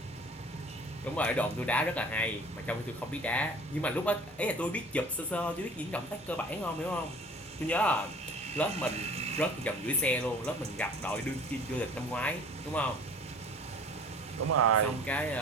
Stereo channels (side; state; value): both; normal; correlation 0.46